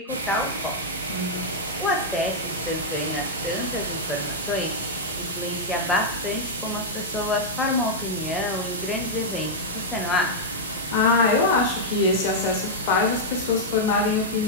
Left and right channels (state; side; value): normal; both; correlation -0.06